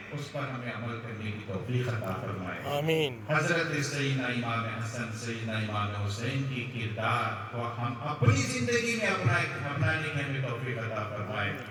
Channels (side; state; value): both; identical; correlation 1.00